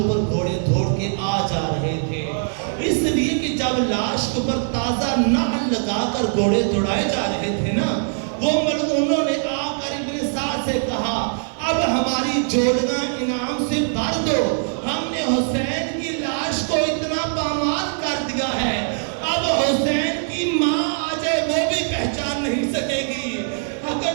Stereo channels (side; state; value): left; silent; digital silence